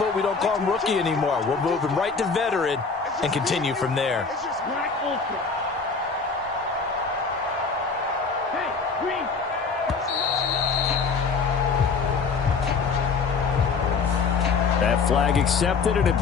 we don't call him rookie anymore. We'll move him right to veteran and continue from there. That flag accepted, and it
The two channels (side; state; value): right; quieter; 4.9 dB